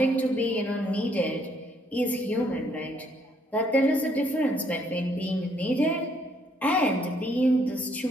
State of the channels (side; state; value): both; normal; correlation 0.69